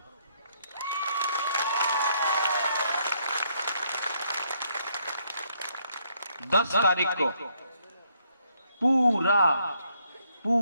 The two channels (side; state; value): both; inverted; correlation -0.71